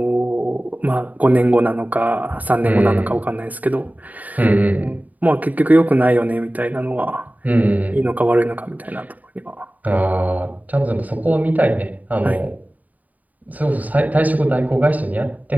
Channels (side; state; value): left; late; 0.077 ms